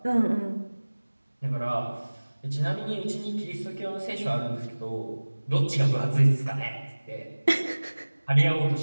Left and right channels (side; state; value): both; inverted; correlation -1.00